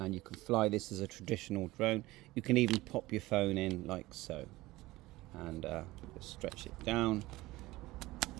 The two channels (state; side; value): quieter; left; 18.9 dB